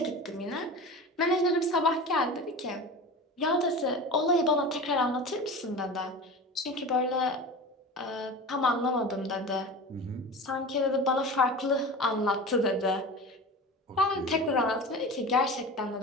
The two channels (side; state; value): both; normal; correlation 0.32